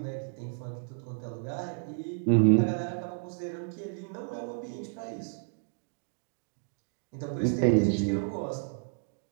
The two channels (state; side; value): silent; left; digital silence